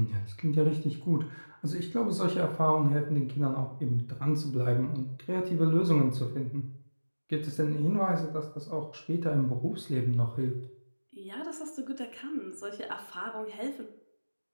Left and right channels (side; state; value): both; inverted; correlation -1.00